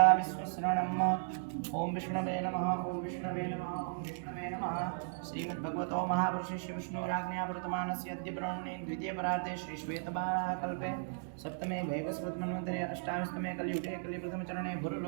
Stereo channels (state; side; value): silent; left; digital silence